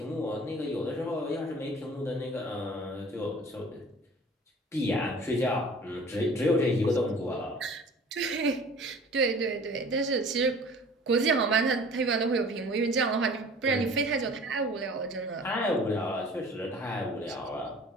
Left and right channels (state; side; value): normal; both; correlation 0.46